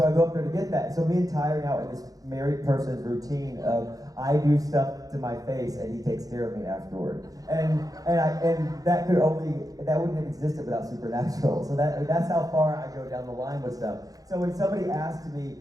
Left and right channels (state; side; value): late; left; 0.17 ms